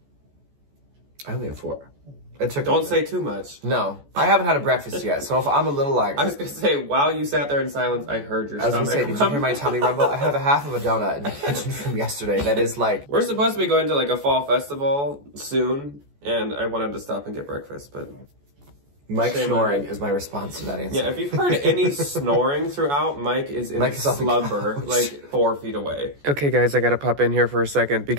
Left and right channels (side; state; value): left; late; 14 ms